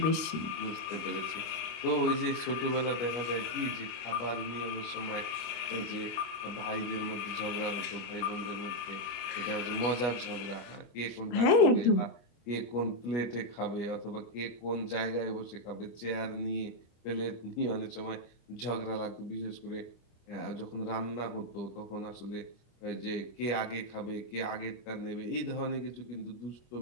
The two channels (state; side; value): late; right; 25 ms